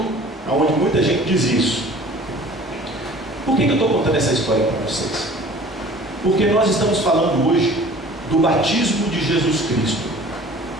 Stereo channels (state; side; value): normal; both; correlation 0.47